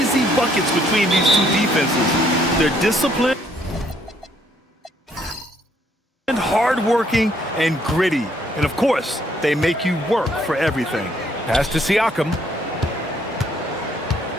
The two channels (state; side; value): normal; both; correlation 0.67